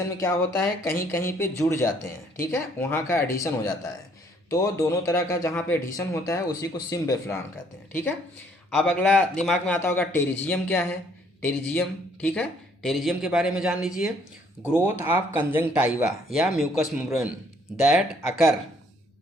में क्या होता है, कहीं कहीं पे जुड़ जाते हैं, ठीक है, वहाँ का एडिशन हो जाता है। तो दोनों तरह का जहाँ पे एडिशन होता है उसी को सिम्ब्लिफरान कहते हैं, ठीक है। अब अगला दिमाग में आता होगा टेरिजियम क्या है, टेरिजियम, ठीक है, टेरिजियम के बारे में जान लीजिए। ग्रोथ ऑफ कंजंक्टाइवा या mucous membrane that occur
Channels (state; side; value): normal; both; correlation 0.64